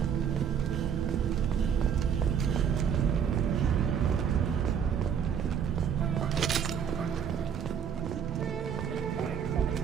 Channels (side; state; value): left; quieter; 7.9 dB